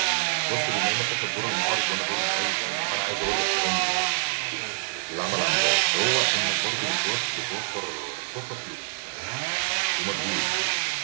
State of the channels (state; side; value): silent; left; digital silence